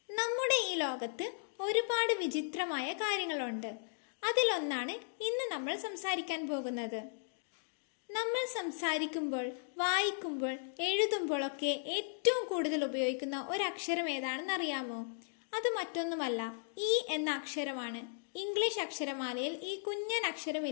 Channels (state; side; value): silent; right; digital silence